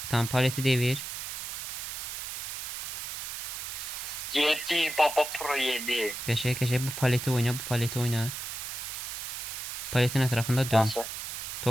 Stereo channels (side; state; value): right; noise; hiss, 6 dB below the sound